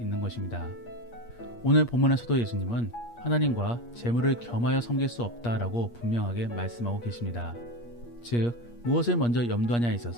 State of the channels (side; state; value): right; late; 8.5 ms